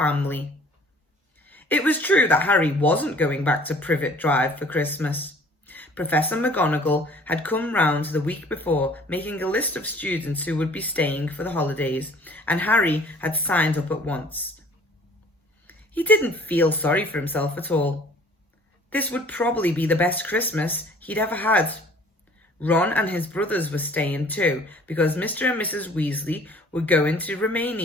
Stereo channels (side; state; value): both; normal; correlation 0.53